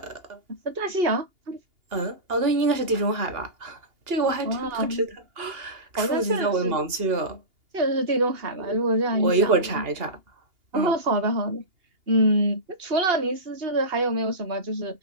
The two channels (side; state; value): left; late; 2.8 ms